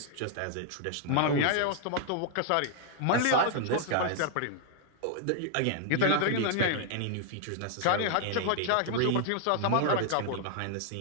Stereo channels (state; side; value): different; both; correlation 0.00